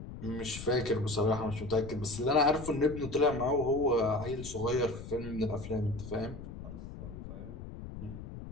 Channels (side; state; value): left; noise; rumble, 11 dB below the sound